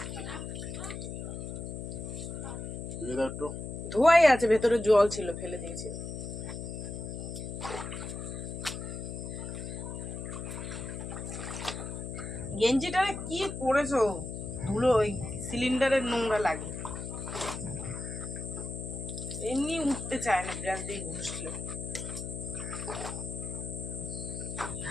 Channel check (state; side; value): noise; left; hum, 6 dB below the sound